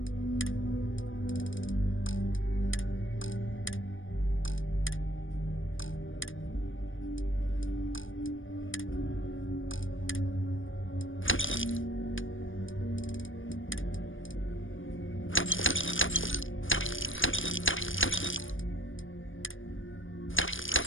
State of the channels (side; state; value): right; late; 0.57 ms